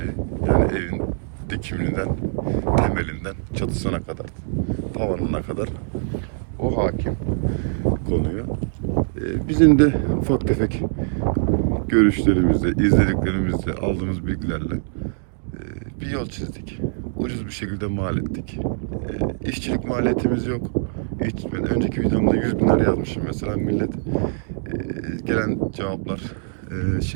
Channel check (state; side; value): silent; left; digital silence